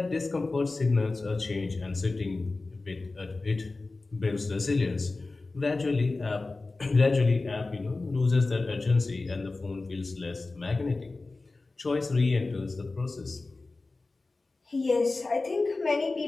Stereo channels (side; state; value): right; quieter; 3.4 dB